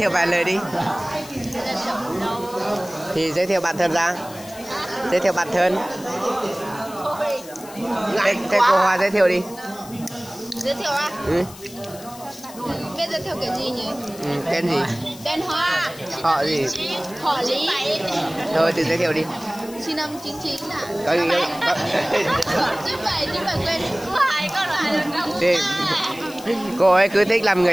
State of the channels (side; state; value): left; noise; hiss, 18 dB below the sound